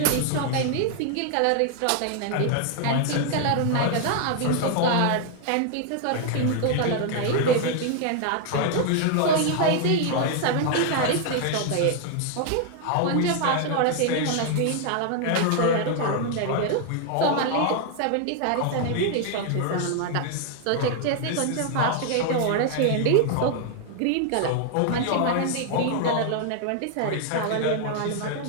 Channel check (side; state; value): both; different; correlation 0.00